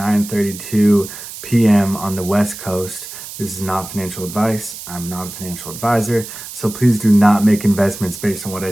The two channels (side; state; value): right; noise; hiss, 12 dB below the sound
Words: p.m. on the West Coast. This is not financial advice. I'm not a financial advisor, so please do not make investments based on what I